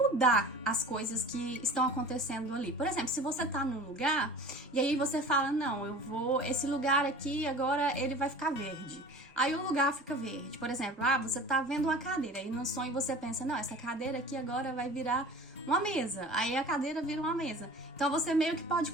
as coisas que estão acontecendo ali. Por exemplo, se você tá num lugar e aí você fala, não, esse lugar aqui agora ele vai ficar verde. Aí o lugar fica verde. Por exemplo, você tá vendo uma cadeira e no sonho você pensa, não, essa cadeira aqui agora vai virar uma mesa. Aí a cadeira vira uma mesa. Então você meio que pode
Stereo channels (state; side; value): normal; both; correlation 0.41